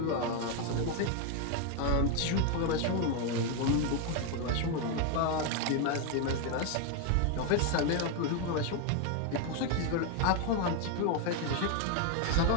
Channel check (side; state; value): both; different; correlation 0.01